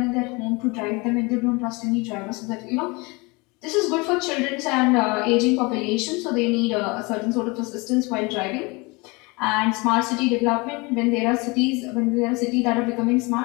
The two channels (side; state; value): right; quieter; 26.6 dB